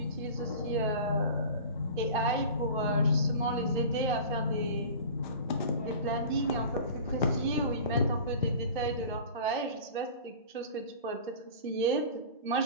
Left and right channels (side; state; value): both; inverted; correlation -0.37